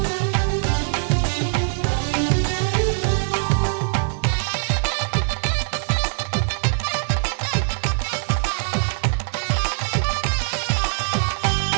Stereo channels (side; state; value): left; silent; digital silence